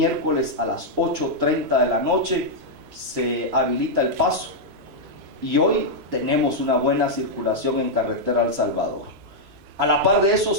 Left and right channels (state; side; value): late; left; 3.0 ms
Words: a las 8:30 de la noche se habilita el paso, y hoy tenemos una buena circulación en carretera El Salvador. A la par de eso,